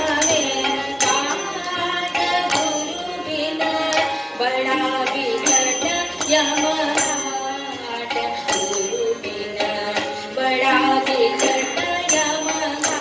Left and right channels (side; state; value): both; identical; correlation 1.00